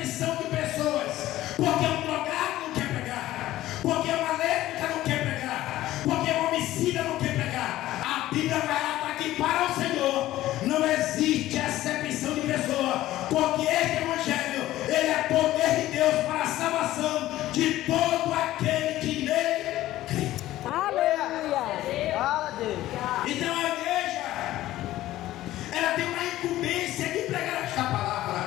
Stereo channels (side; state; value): right; quieter; 15.1 dB